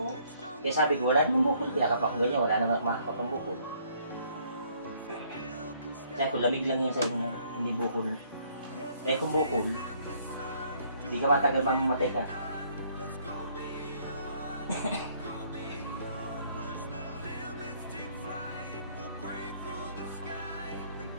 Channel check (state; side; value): inverted; both; correlation -0.64